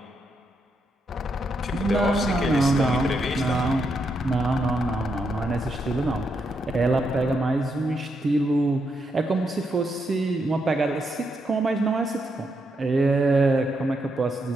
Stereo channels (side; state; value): both; normal; correlation 0.81